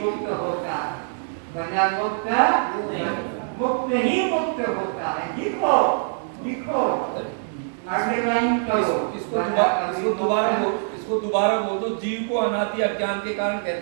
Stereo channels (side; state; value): left; silent; 58 dB below the other